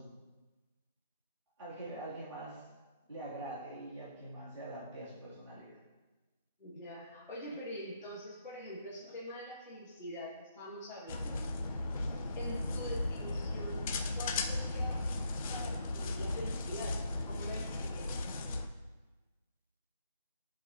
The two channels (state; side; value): inverted; both; correlation -0.74